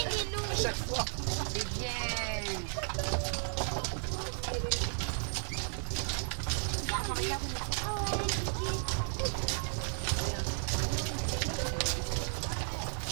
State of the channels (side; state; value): left; silent; 55 dB below the other